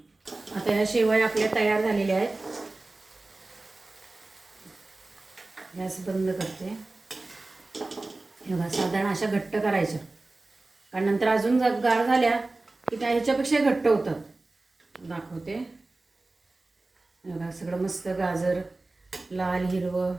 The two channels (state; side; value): quieter; left; 3.1 dB